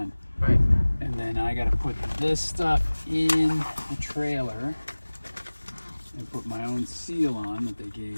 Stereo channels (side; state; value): both; inverted; correlation -1.00